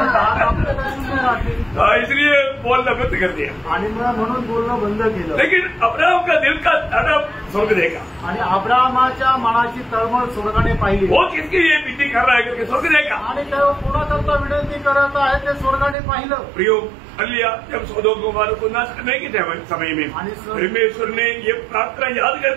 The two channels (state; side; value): drops out; left; at 16.0 s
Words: 10 कापले तर 0 राहतील। इसलिए बोलना बंद कर दिया। आणि म्हणून बोलणं बंद केलं। लेकिन अब्राहम का दिल का तड़प स्वर्ग देखा। आणि अब्राहमाच्या मनाची तळमळ स्वर्गाने पाहिली। वो किसके लिए विनती कर रहा है करके स्वर्ग देखा। आणि तेव्हा कोणाकरता विनंती करत आहे ते स्वर्गाने पाहिलं। प्रियो अलिया जब सदोम गोमोरा को नाश करने के समय में परमेश्वर ने ये प्रार्थना याद